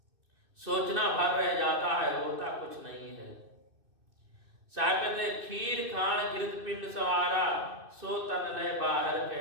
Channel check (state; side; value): late; left; 2.6 ms